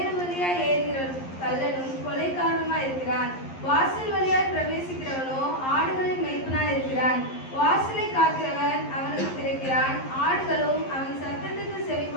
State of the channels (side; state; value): right; late; 11 ms